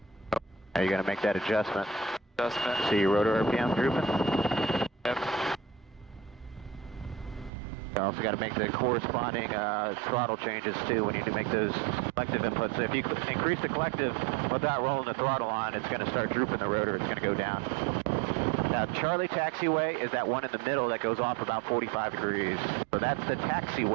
Now you're gonna make that adjustment. Adjustment. See your rotor RPM drooping? Yep. You also got to make the corresponding throttle changes too when you do make those collective inputs. So if you increase the collective without rolling the throttle on, it's going to start drooping the rotor. It's going to go down. Now, Charlie taxiway is that one in the middle that goes off about 45 degrees. So that's the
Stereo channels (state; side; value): drops out; left; at 7.5 s